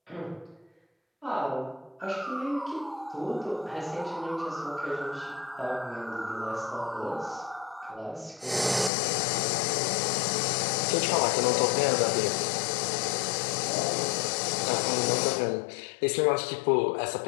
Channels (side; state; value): right; drops out; at 8.9 s